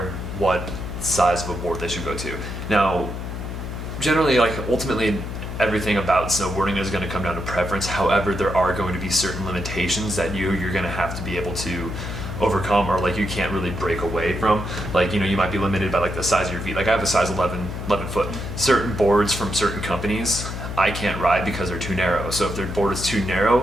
of what size of a board they should go to. Now, generally, like ultimately, everything about snowboarding is going to come down to preference. However, there are going to be certain limitations that you're going to have to be able to overcome, or like you can't really break away from. Like, you know, you might be limited by like the size of your feet. Like I have a size 11 foot. Certain boards from certain companies I can't ride because they're too narrow. So if their board is too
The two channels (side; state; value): left; noise; hum, 6 dB below the sound